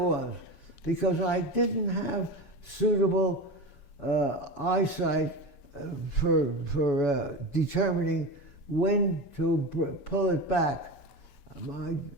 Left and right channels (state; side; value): late; right; 7.1 ms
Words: because I didn't have suitable eyesight for determining when to pull it back.